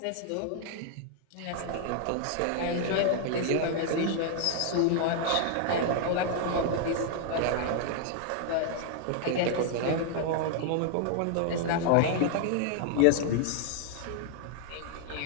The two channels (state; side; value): different; both; correlation 0.00